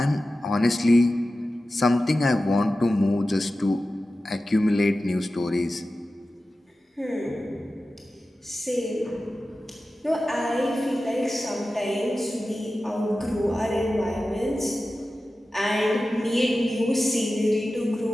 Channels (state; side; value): normal; both; correlation 0.94